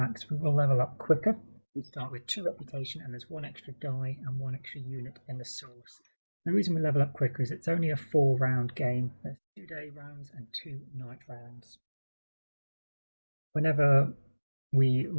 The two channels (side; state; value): both; inverted; correlation -1.00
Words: We will level up quicker. We start with 2 reputation, and there's 1 extra die and 1 extra unit in the source. The reason we level up quicker is it's only a 4-round game. There's 2 day rounds and 2 night rounds. Whenever we